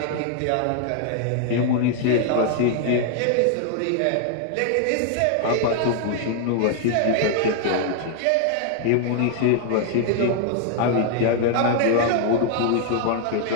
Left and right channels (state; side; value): different; both; correlation 0.00